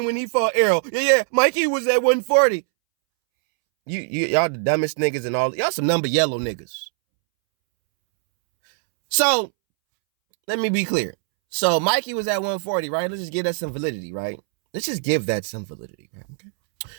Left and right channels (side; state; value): left; silent; 64 dB below the other